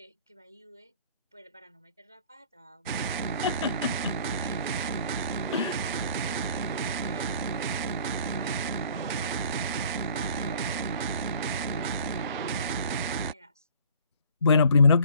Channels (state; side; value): inverted; both; correlation -0.51